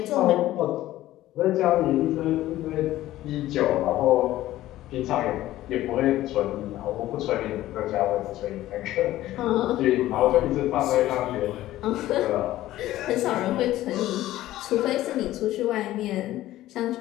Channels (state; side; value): quieter; right; 15.0 dB